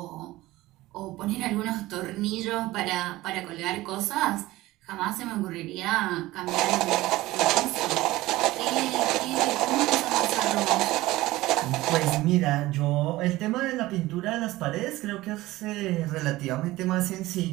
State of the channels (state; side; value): quieter; left; 18.0 dB